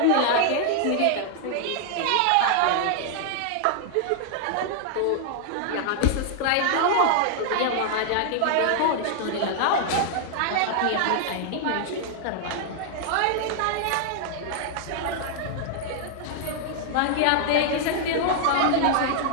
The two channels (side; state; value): both; different; correlation 0.00